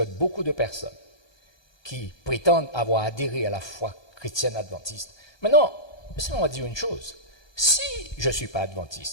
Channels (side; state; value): right; late; 1.2 ms